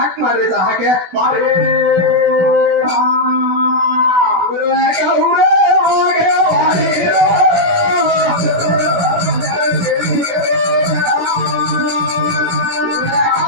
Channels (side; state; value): left; late; 16 ms